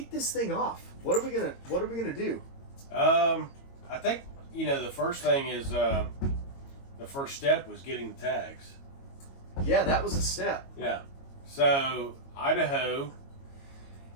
this thing off? What are we gonna do? I think the first thing is the first step was getting the tags. Yeah, that was a step. Yeah. So Idaho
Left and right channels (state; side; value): late; right; 22 ms